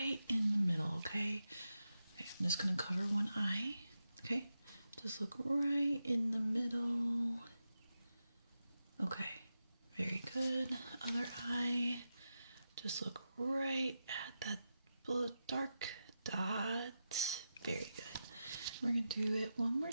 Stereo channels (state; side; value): inverted; both; correlation -0.87